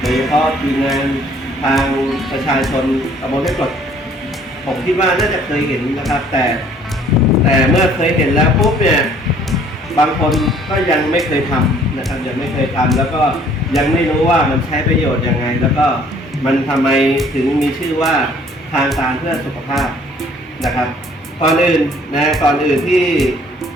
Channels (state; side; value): normal; both; correlation 0.58